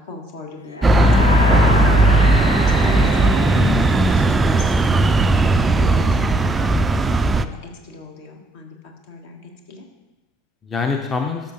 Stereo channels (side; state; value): both; normal; correlation 0.71